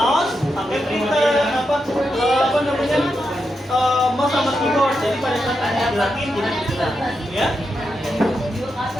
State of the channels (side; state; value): both; normal; correlation 0.86